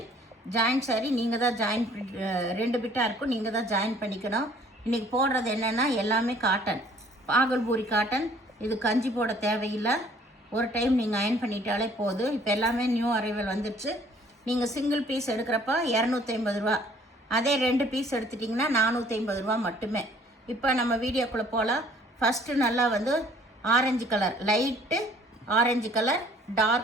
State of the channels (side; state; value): both; normal; correlation 0.57